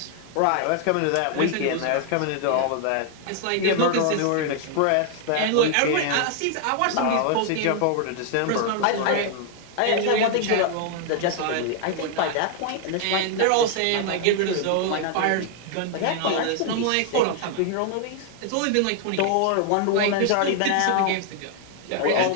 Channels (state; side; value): different; both; correlation 0.00